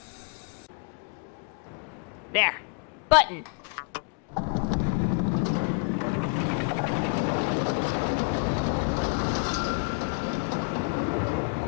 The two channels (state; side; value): quieter; right; 39.9 dB